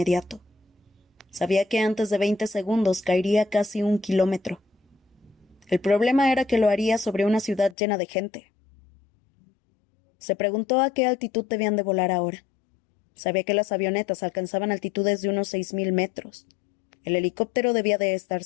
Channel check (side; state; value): right; drops out; at 7.8 s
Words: Sabía que antes de 20 segundos caería casi 1 kilómetro. El problema era que lo haría sobre una ciudad llena de gente. Se preguntó a qué altitud debían de volar ahora. Sabía que las avionetas alcanzaban altitudes de unos 6.000 metros. El helicóptero debía de estar